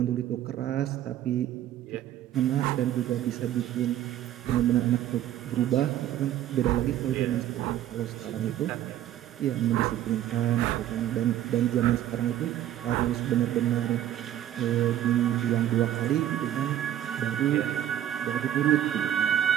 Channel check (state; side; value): quieter; left; 12.0 dB